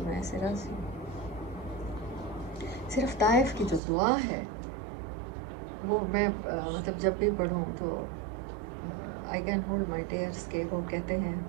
میں ایسے راضی ہوں. صرف طائف کی جو دعا ہے وہ میں مطلب جب بھی پڑھوں تو I can hold my tears, کے وہ کہتے ہیں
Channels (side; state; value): left; drops out; at 3.8 s